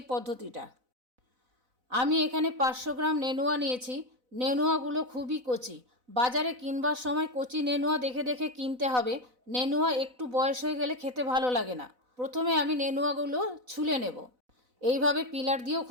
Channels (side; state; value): left; late; 4.0 ms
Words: পদ্ধতিটা। আমি এখানে 500 গ্রাম নেনুয়া নিয়েছি। নেনুয়াগুলো খুবই কচি। বাজারে কিনবার সময় কচি নেনুয়া দেখে দেখে কিনতে হবে। নেনুয়া একটু বয়স হয়ে গেলে খেতে ভালো লাগে না। প্রথমে আমি নেনুয়াগুলো ছুলে নেব। এইভাবে পিলার দিয়েও